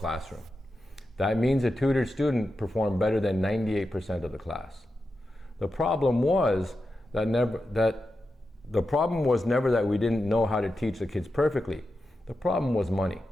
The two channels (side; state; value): both; normal; correlation 0.89